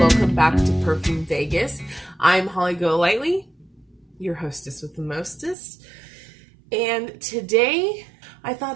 back to Perfume Vegas. I'm Holly Golightly, your hostess with the mostest. And today, I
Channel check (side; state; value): left; drops out; at 5.6 s